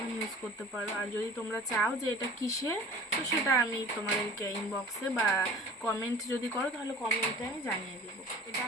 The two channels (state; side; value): normal; both; correlation 0.44